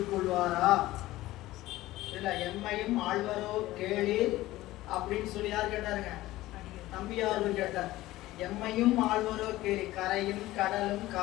இல்ல எம்மையும் ஆழ்வரோ கேளி அப்படின்னு சொல்லி யார் கேட்டாருங்க? நம்பியார்கள் கேட்டார். எம்மையும் ஆழ்வரோ கேளி, கரையும் கடலும்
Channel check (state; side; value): quieter; right; 16.9 dB